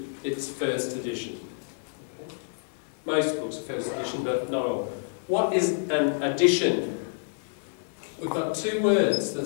it's first edition. Okay. Most books are first edition, but not all. What is an edition? We've got two words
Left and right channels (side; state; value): right; silent; digital silence